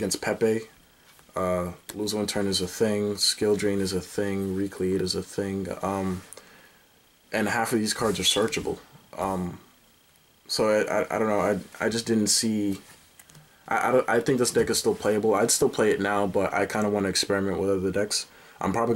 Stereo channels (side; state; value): both; identical; correlation 1.00